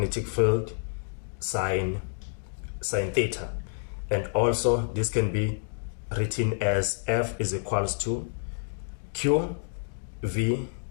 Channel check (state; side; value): silent; right; digital silence